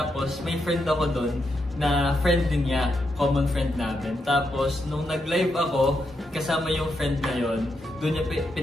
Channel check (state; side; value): normal; both; correlation 0.82